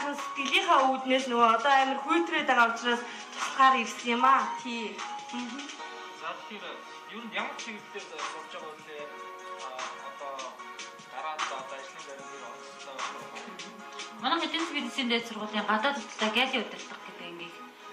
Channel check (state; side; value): identical; both; correlation 1.00